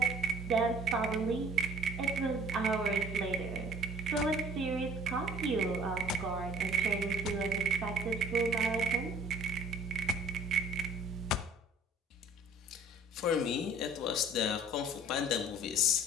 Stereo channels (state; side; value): normal; both; correlation 0.53